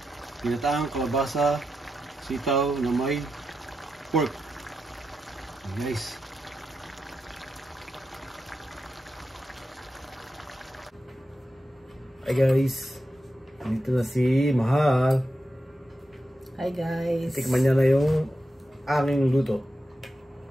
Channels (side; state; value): both; normal; correlation 0.88